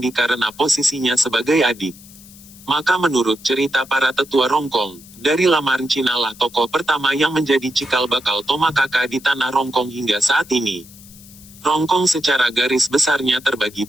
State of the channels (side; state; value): left; noise; hiss, 21 dB below the sound